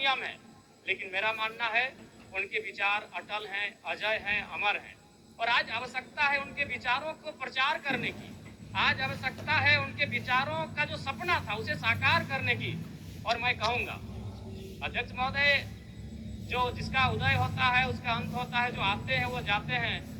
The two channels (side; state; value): both; identical; correlation 1.00